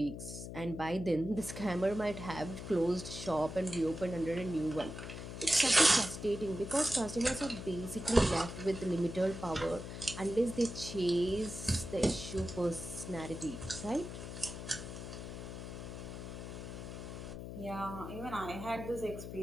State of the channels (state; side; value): noise; left; hum, 8 dB below the sound